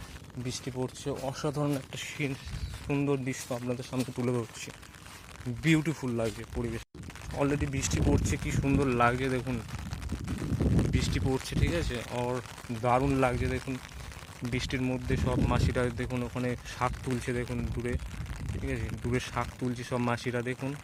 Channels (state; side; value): identical; both; correlation 1.00